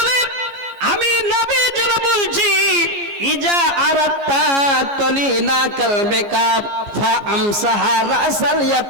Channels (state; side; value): late; left; 14 ms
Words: আমি নবী যেন বলছি, ইজা আরাত্তা তলিনা কালবিকা ফাআমসাহা রাসাল